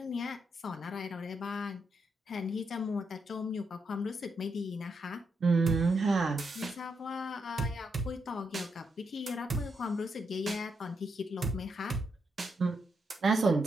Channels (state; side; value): normal; both; correlation 0.80